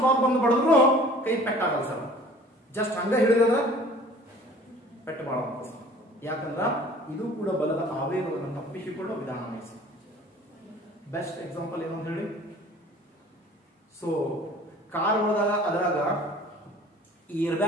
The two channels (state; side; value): normal; both; correlation 0.48